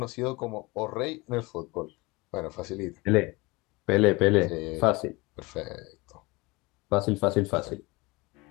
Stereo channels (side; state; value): right; quieter; 24.0 dB